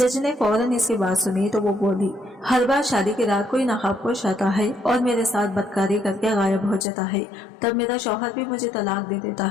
ने फौरन इसकी बात सुनी तो वो बोली, हर बार शादी की रात कोई नकाबपोश आता है और मेरे साथ बदकारी करके गायब हो जाता है, तब मेरा शौहर भी मुझे तलाक दे देता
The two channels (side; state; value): right; drops out; at 6.9 s